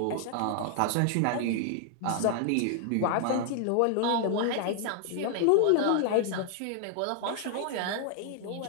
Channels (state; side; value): different; both; correlation 0.00